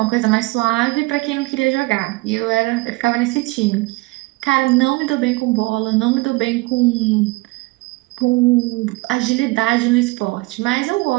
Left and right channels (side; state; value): left; quieter; 23.3 dB